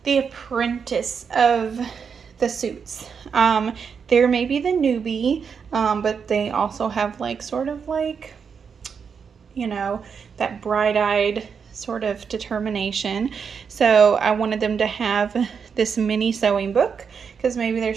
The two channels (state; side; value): quieter; left; 6.4 dB